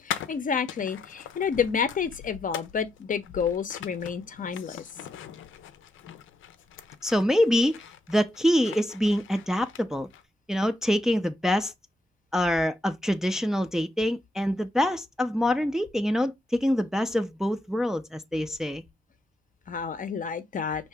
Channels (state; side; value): normal; both; correlation 0.81